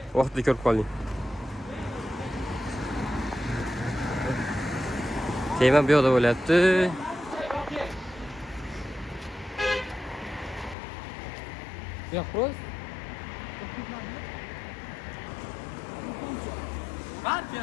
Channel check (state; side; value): drops out; right; at 10.8 s